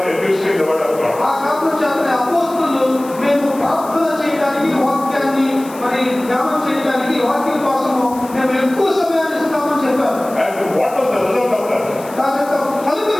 the word of God. ఆ కారణం చేతనే అపోస్తలులు మేము ప్రార్థన చేయడానికి, వాక్యాన్ని మరి ధ్యానం చేయడానికి, వాక్యం కోసము మేము ఎక్కువ సమయాన్ని ఇస్తామని చెప్పారు. And what was the result of that? దాని యొక్క ఫలితం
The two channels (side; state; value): left; noise; hiss, 19 dB below the sound